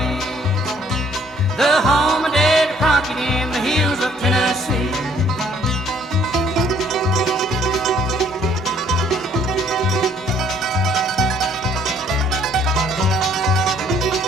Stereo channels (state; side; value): normal; both; correlation 0.62